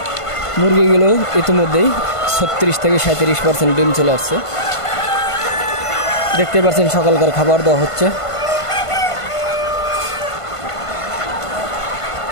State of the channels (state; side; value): late; right; 1.5 ms